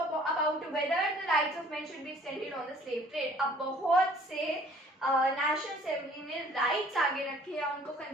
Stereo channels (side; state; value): both; normal; correlation 0.54